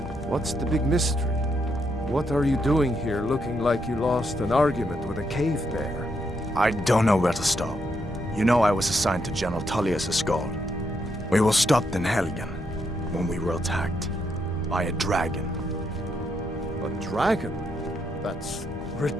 what's the big mystery? What are you doing here looking like you lost an argument with a cave bear? I don't know where to stop. You know I was assigned to General Tullius Skald. We were stopped in Helgen when we were attacked by a dragon. A dragon? That's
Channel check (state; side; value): normal; both; correlation 0.78